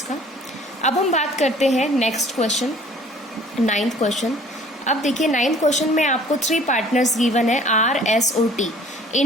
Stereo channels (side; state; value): both; normal; correlation 0.53